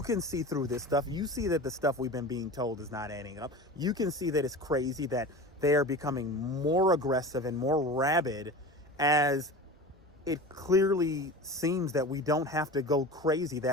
can see through this stuff. You see that the stuff we've been being told is not adding up. You can see that it's crazy, that they are becoming more aggressive and more rabid, as it clearly seems that we don't have to go crazy,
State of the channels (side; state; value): both; normal; correlation 0.33